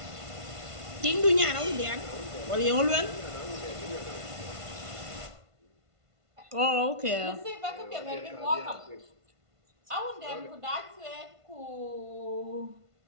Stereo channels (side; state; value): left; late; 1.5 ms